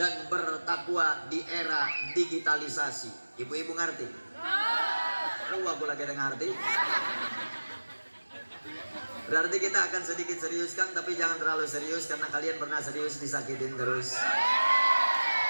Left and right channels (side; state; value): both; inverted; correlation -1.00